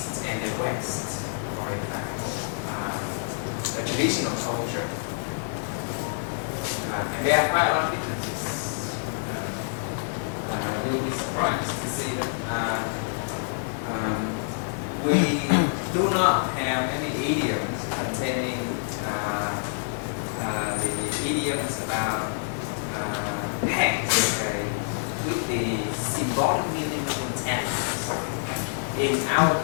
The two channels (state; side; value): silent; right; 60 dB below the other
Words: and the West, for example, the traditional culture. And there are quite a lot of differences. You'll be surprised to see that we do not have any idioms containing the idioms about hands, with the symbolic meaning of intent. In our